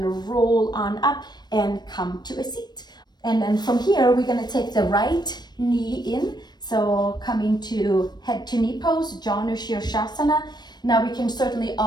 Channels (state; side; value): late; right; 0.20 ms